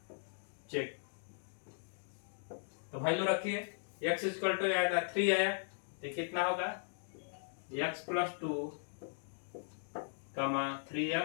चेक तो वैल्यू रखिए x इक्वल टू आया था 3 आया तो कितना होगा x+2 कमा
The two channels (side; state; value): right; silent; digital silence